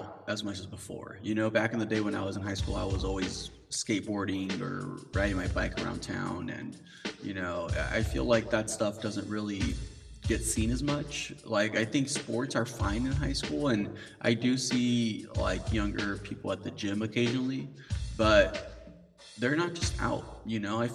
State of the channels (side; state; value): both; identical; correlation 1.00